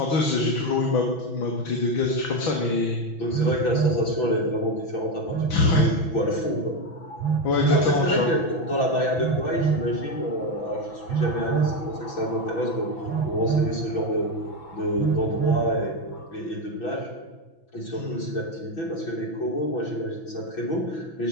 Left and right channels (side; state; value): right; late; 6.0 ms